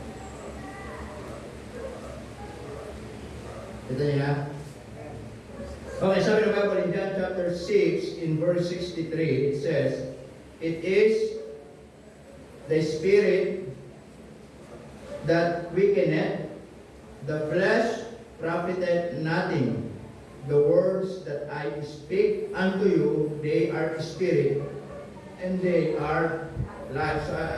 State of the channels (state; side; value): identical; both; correlation 1.00